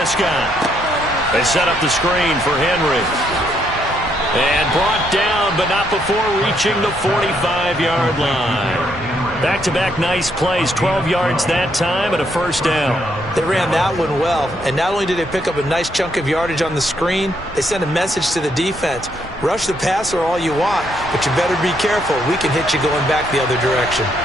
They set up the screen for Henry. And brought down, but not before reaching the 45-yard line. Back-to-back nice plays, 12 yards that time and a 1st down. They ran that one well, and not only did they pick up a nice chunk of yardage on the screen, they sent a message to the defense. Rush the passer all you want, but you better be careful. We can hit you going back the other direction.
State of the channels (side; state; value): both; normal; correlation 0.74